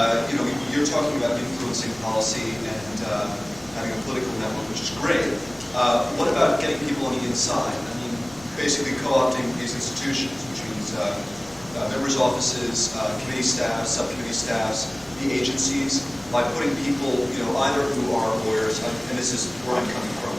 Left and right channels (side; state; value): left; noise; rumble, 23 dB below the sound